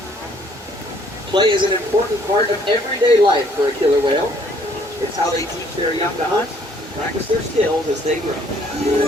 Play is an important part of everyday life for a killer whale. It's how they teach their young to hunt, practice their skills as they grow.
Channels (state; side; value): normal; both; correlation 0.62